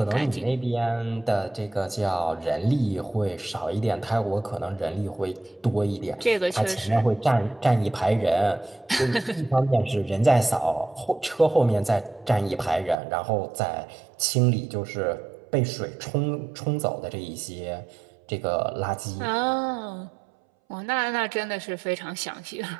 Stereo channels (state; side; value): drops out; left; at 13.0 s